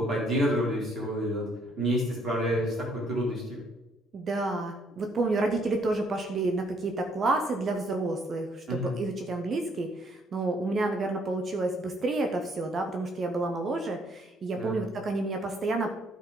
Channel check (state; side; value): normal; both; correlation 0.67